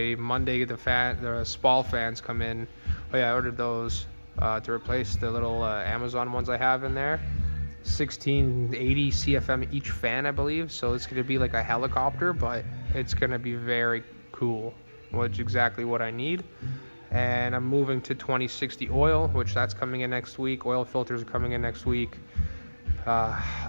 Monday, the Spall fans come in. Oh yeah, I ordered those to replace the little Amazon ones I have in there. 1680 CFM each fan, I believe. So it's going to be like a helicopter, but it's going to be very cool, which is exactly what I need. And I'm moving to 2060 oil, which that's coming in next week. Oil filters are coming in next week.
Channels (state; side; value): inverted; both; correlation -1.00